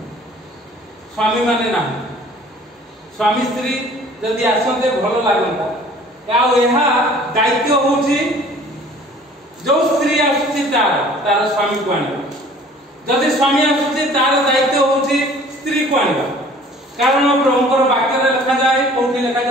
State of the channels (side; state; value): both; normal; correlation 0.51